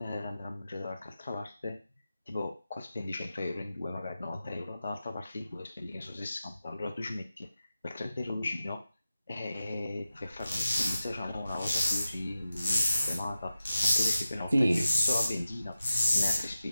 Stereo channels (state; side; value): inverted; both; correlation -0.93